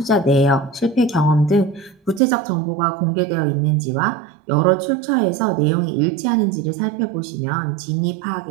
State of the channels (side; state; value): left; drops out; at 2.2 s